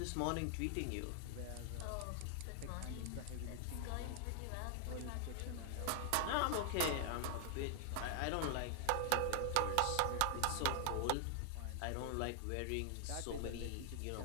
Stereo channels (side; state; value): both; different; correlation 0.00